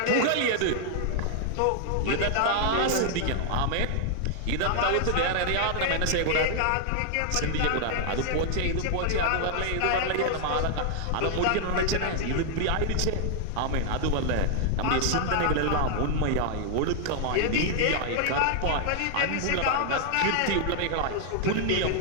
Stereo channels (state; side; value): different; both; correlation 0.00